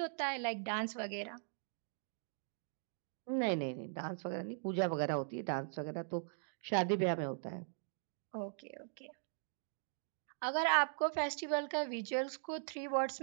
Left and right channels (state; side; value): silent; left; digital silence